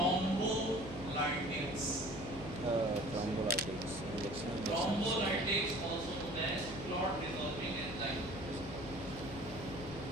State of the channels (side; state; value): left; noise; hum, 10 dB below the sound